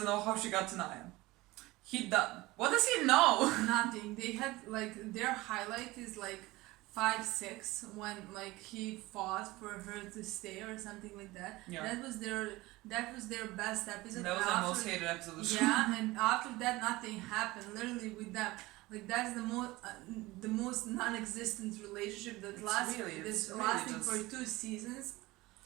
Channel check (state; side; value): quieter; left; 20.0 dB